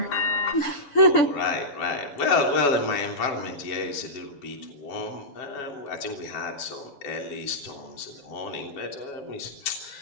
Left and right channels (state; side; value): late; right; 7.1 ms